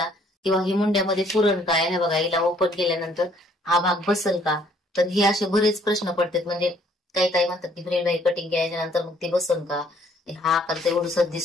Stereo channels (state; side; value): normal; both; correlation 0.63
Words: किंवा ही मुंड्यामध्ये पुरण काय, हे बघा हिला ओपन केल्यानंतर हा भाग बसल का, तर हे असे बरेच प्रश्न पडतात. म्हणजे काही काही म्हणतात की फ्रेंड बाई कटिंग केल्याच्या नंतर मग ते बसल का, हा आकार तर एवढंच